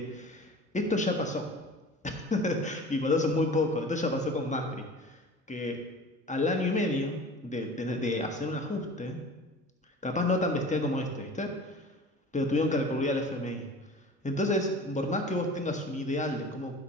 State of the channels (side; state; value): both; normal; correlation 0.41